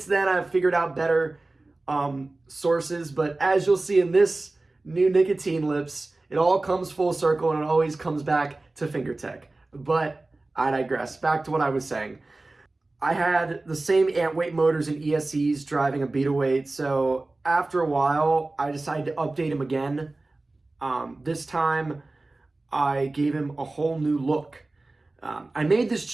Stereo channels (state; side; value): quieter; left; 3.1 dB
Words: then, I've figured out better sources, but as you'll see in this new Nicotine Lips, it all comes full circle and it always comes back to FingerTech. But I digress. Back to what I was saying. I had the same ant weight motors and ESCs driving a beetleweight, so after a while, I decided to update him again. This time, I gave him a whole new look. I made this